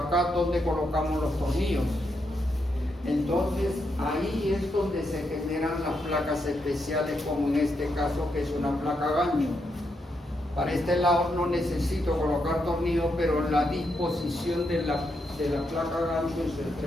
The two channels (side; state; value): both; normal; correlation 0.81